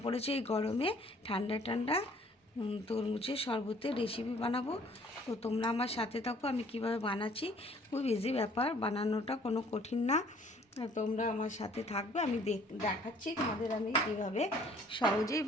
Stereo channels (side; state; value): both; normal; correlation 0.57